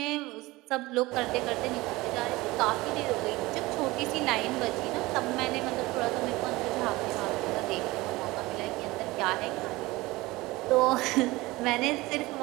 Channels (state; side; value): quieter; left; 20.4 dB